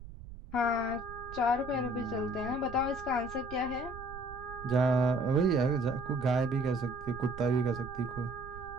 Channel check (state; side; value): noise; right; rumble, 14 dB below the sound